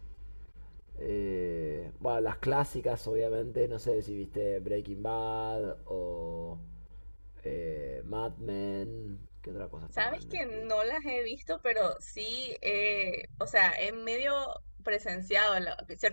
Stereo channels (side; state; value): both; inverted; correlation -1.00